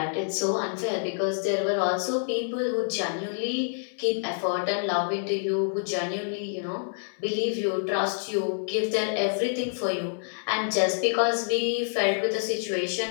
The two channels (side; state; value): right; silent; 60 dB below the other